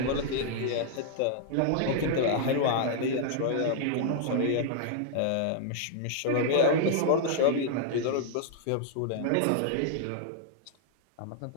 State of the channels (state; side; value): different; both; correlation -0.01